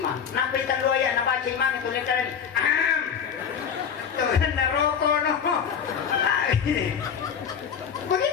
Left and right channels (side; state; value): right; quieter; 7.3 dB